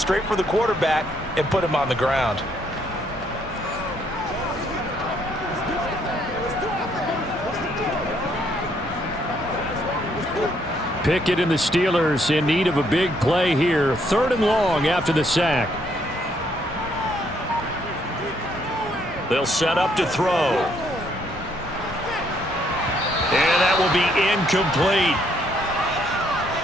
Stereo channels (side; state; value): both; normal; correlation 0.70